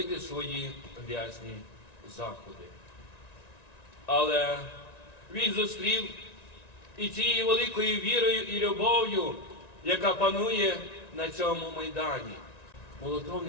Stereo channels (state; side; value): late; right; 1.9 ms